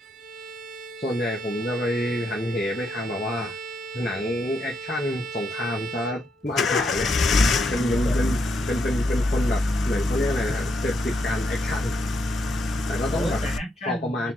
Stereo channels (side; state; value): both; normal; correlation 0.79